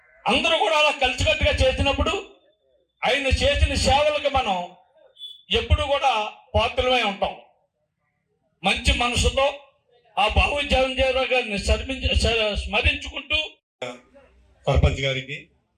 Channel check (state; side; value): identical; both; correlation 1.00